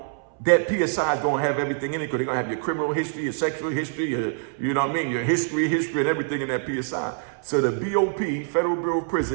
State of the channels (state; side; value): silent; left; 62 dB below the other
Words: that PSI is going to have everything in it, because they're going to have your criminal history, your sexual history, you know what I mean, your history and everything in that PSI. So the BOP, Federal Bureau of